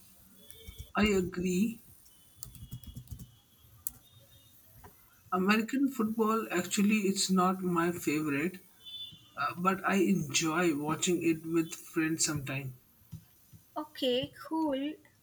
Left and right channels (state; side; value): identical; both; correlation 1.00